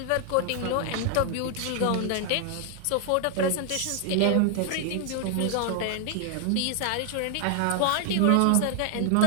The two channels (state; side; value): different; both; correlation 0.00